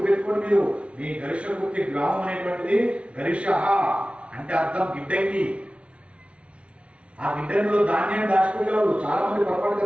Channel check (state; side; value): late; left; 0.061 ms